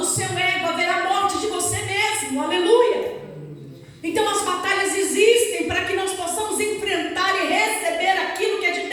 seu ego, haverá morte de você mesmo, aleluia. Então as batalhas existem para que nós possamos enfrentar e receber aquilo que é de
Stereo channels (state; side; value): identical; both; correlation 1.00